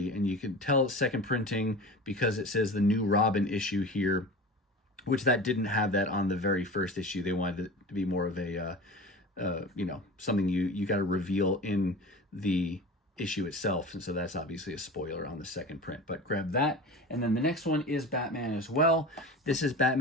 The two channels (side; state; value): both; normal; correlation 0.33